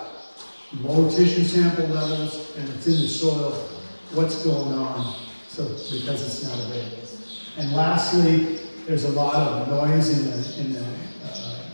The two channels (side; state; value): both; inverted; correlation -1.00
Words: low tissue sample levels and it's in the soil, what's going on? So because it's not available. And lastly, there's a lot of noise in the